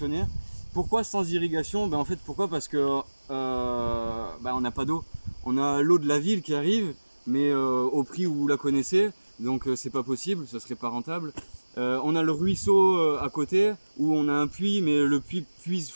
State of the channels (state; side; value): inverted; both; correlation -1.00